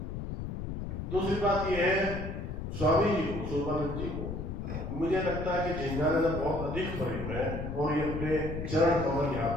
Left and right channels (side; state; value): left; noise; rumble, 5 dB below the sound